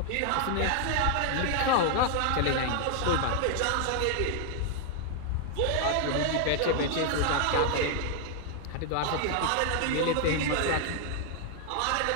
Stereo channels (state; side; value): different; both; correlation 0.00